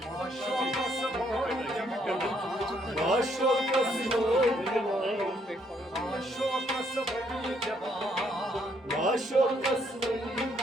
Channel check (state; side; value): normal; both; correlation 0.70